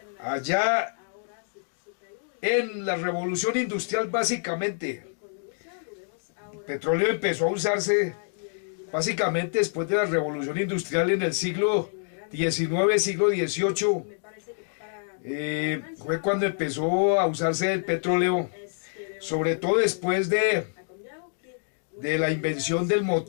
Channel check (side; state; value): right; silent; digital silence